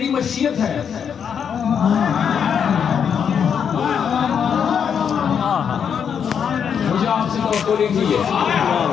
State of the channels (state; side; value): quieter; right; 7.5 dB